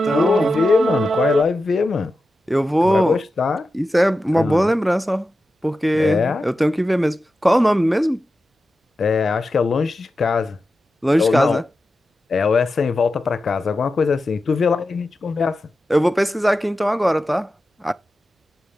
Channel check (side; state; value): both; normal; correlation 0.91